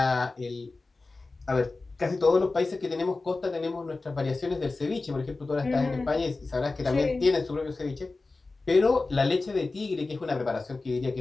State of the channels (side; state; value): right; quieter; 3.5 dB